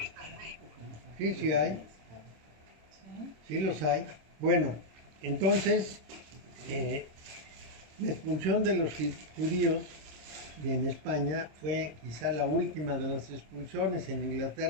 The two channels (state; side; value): late; left; 26 ms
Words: en México. Sí, sí hay, sí los hay. Bueno, entonces, la expulsión de los judíos en España fue quizá la última de las expulsiones. En